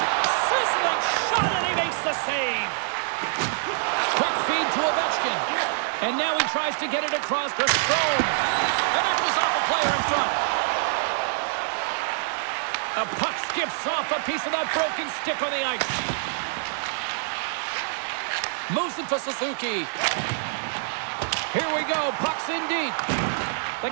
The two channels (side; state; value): left; silent; digital silence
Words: Sizzling shot, and he makes the save. Quick feed to Ovechkin. And now he tries to get it across to Strome. And that goes off a player in front. A puck skips off a piece of that broken stick on the ice. Moves it to Suzuki. Here we go. Puck's in deep.